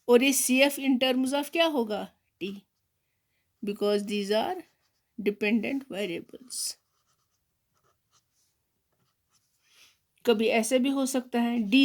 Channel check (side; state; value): both; identical; correlation 1.00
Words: और ये CF इन टर्म्स ऑफ क्या होगा, t, because these are dependent variables. कभी ऐसे भी हो सकता है